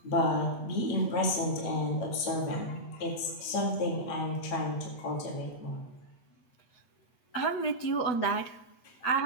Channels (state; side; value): late; right; 8.1 ms